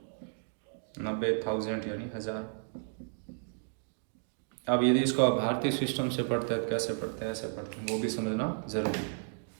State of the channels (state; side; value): silent; left; digital silence